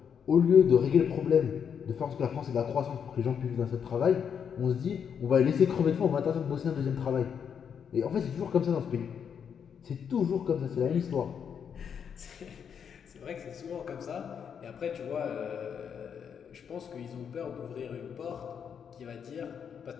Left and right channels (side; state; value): right; quieter; 7.5 dB